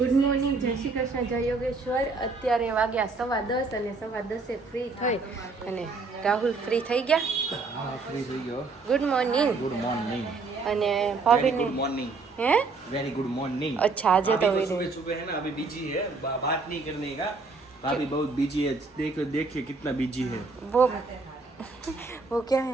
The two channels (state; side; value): quieter; left; 4.0 dB